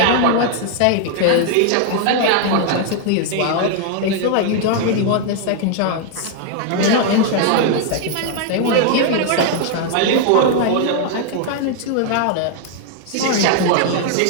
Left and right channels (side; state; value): both; different; correlation 0.00